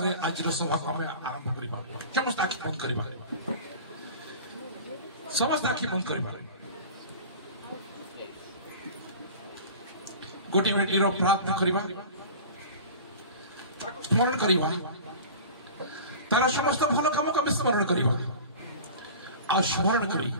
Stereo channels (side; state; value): both; inverted; correlation -0.37